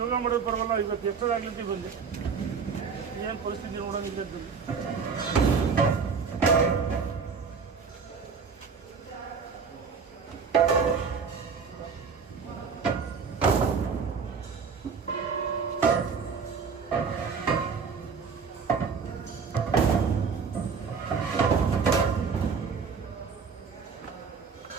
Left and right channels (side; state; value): left; quieter; 5.6 dB